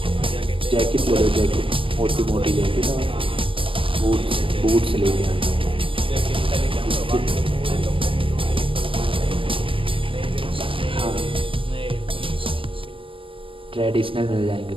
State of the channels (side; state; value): left; late; 0.25 ms